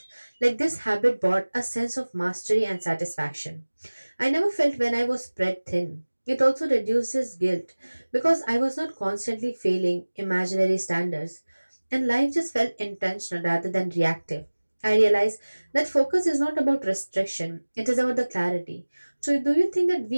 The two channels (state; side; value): inverted; both; correlation -1.00